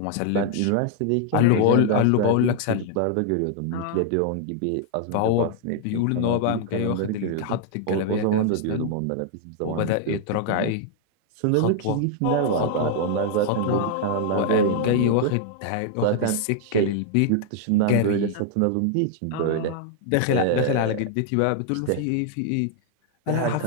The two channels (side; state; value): both; different; correlation 0.00